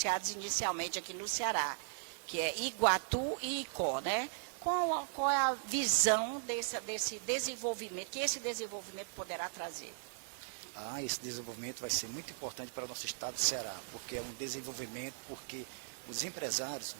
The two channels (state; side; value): silent; left; digital silence